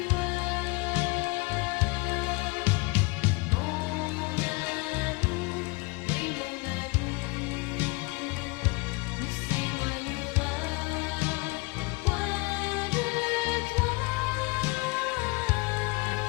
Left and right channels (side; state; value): right; quieter; 26.7 dB